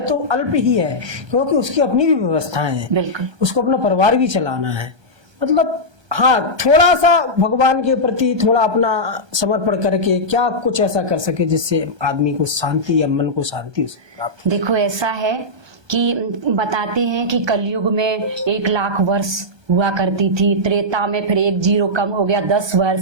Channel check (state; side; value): late; left; 1.3 ms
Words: तो अल्प ही है, क्योंकि उसकी अपनी भी व्यवस्थाएं हैं, बिल्कुल उसको अपना परिवार भी चलाना है। मतलब हाँ, थोड़ा सा भगवान के प्रति थोड़ा अपना समर्पण करके क्या कुछ ऐसा कर सके जिससे आदमी को शांति या मन को शांति प्राप्त। देखो ऐसा है कि बताते हैं कि कलयुग में 1,00,000 वर्ष हुआ करती थी, त्रेता में फिर 1 0 कम हो गया 10